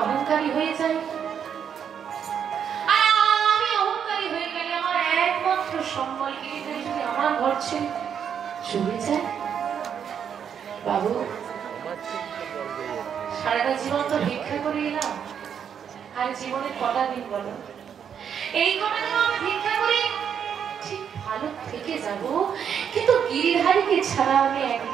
অহংকারী হয়ে যাই, আর আমি অহংকারী হয়ে গেলে আমার একমাত্র সম্বল গিরিধারী যদি আমার ঘর ছেড়ে চলে যায়, বাবু সারাটা জীবন তো ভিক্ষা করে এলাম, আর জীবনে কটা দিন বলো, এই কটা দিন আমি ভিক্ষা করে ঠিক ভালো থেকে যাব, কিন্তু গিরিধারীকে ছাড়া আমি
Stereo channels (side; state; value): left; quieter; 8.0 dB